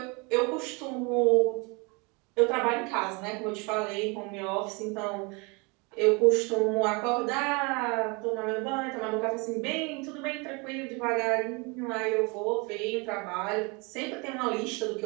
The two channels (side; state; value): left; quieter; 29.5 dB